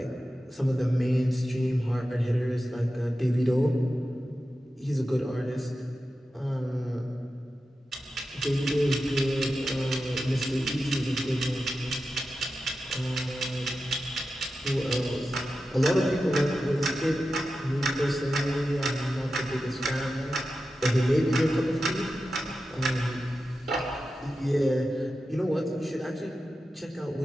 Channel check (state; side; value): normal; both; correlation 0.91